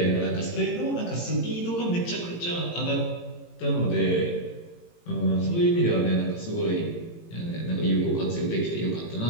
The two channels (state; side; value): late; right; 18 ms